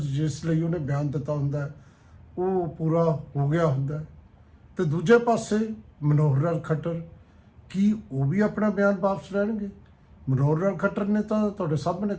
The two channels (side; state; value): both; identical; correlation 1.00